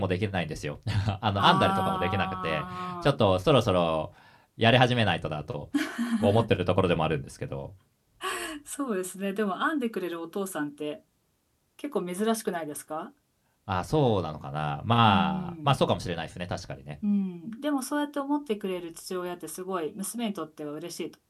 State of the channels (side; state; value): both; identical; correlation 1.00